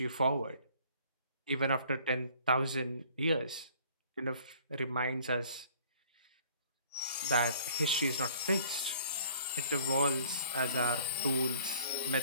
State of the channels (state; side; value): inverted; both; correlation -0.54